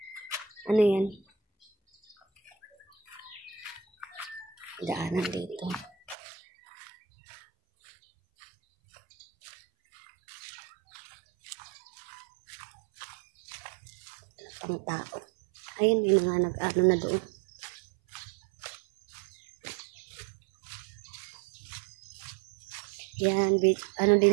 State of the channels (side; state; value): left; drops out; at 6.2 s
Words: Ano yan? Daanan dito. Pang tao. Ayun, may mga nag-ano na doon. Yan, ano